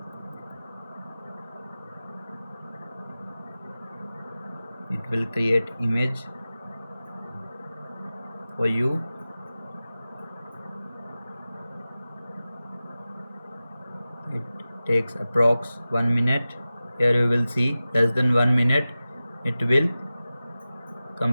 It will create image for you. It takes approx 1 minute. Here you will see less than 1 minute it will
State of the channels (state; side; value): inverted; both; correlation -0.96